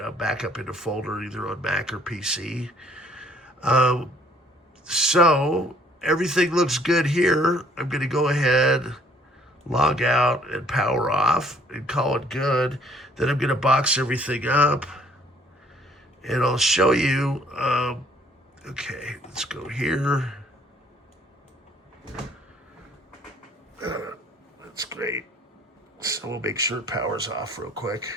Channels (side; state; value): both; normal; correlation 0.61